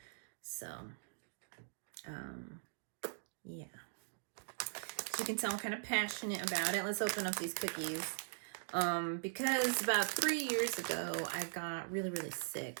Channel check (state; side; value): silent; left; digital silence